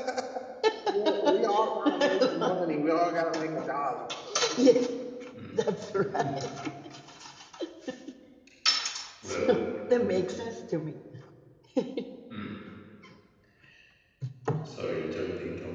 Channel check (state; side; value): identical; both; correlation 1.00